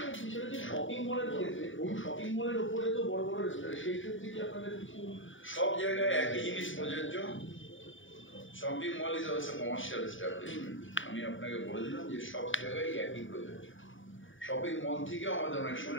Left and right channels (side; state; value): right; late; 0.57 ms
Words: বিষয় হচ্ছে শপিং মলের ক্ষেত্রে, শপিং মলের উপরে তো বড় বড় রেস্টুরেন্ট, সেই ক্ষেত্রে কি আপনাদের কিছু? সব জায়গায় একই জিনিস প্রযোজ্য। Shopping mall is also commercial establishment. আমি আপনাকে বলে দিলাম যে সব জায়গায় একই প্রযোজ্য। শপিং মল থেকেও আমাদের অনেক সময়